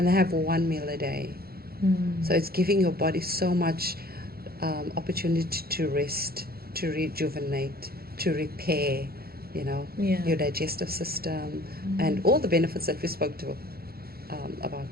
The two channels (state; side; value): late; left; 0.44 ms